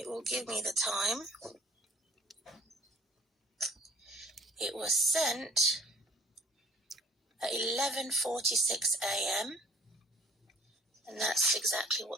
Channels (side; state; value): both; normal; correlation 0.54